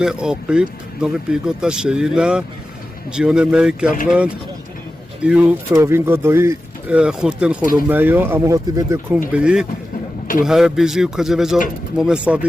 okuyup nove pigota şeyina Cione mey kavlan iu provingo doi khurten khulumayo ama hoti bede kumbi tu her bizi kaje vejo mome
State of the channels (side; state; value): both; normal; correlation 0.94